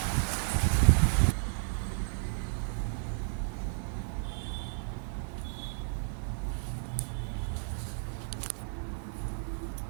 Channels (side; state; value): left; silent; digital silence